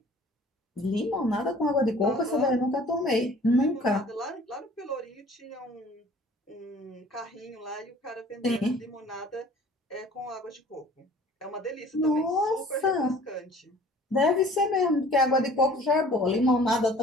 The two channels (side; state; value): both; normal; correlation 0.50